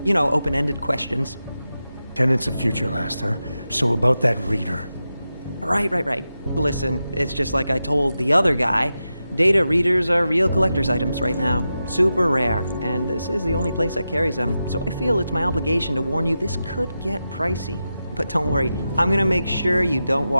You know, open-ended questions. Tenants of Future Last, huh? So about that reader. Right. Listen, it's just like I told the other guy. Data readers are real collector's items right now. Super rare. And this is the only place that carries them. So I feel it's my obligation to warn you this could get pricey. But don't worry, I'm gonna make sure you don't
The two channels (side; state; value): both; inverted; correlation -0.91